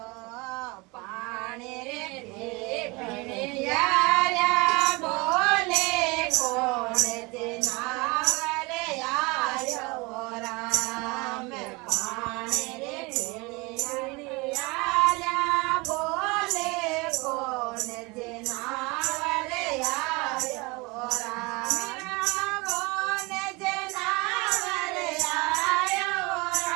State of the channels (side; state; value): left; quieter; 26.0 dB